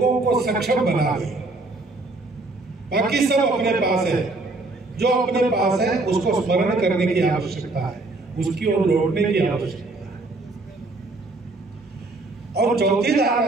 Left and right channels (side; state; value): left; quieter; 3.2 dB